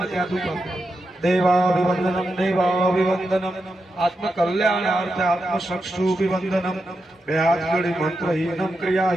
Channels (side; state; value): both; normal; correlation 0.87